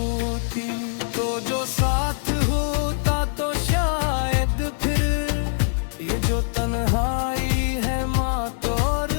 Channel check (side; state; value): right; silent; digital silence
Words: तो जो साथ होता तो शायद फिर ये जो तन्हाई है मात और